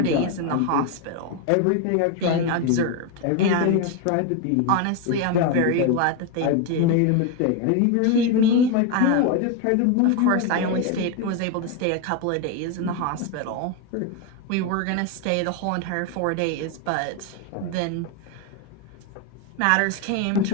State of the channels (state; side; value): different; both; correlation 0.02